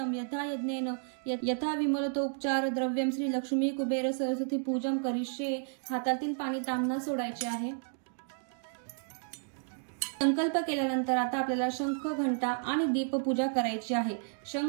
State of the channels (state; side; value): silent; left; digital silence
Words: यथा यज्ञेन यथा विमलतो उपचार द्रव्यम श्री लक्ष्मी कुबेर सरस्वती पूजन करिष्ये। हातातील पाणी तांबणा सोडायचे आहे। संकल्प केल्यानंतर आता आपल्याला शंख घंटा आणि दीपपूजा करायची आहे।